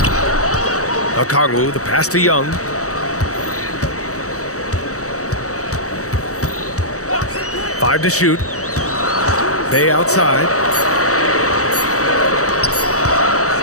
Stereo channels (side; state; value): right; late; 0.65 ms